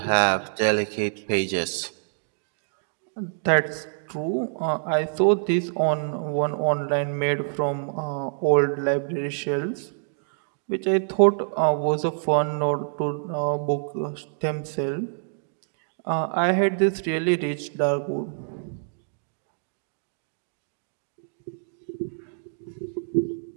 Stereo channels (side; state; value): left; silent; digital silence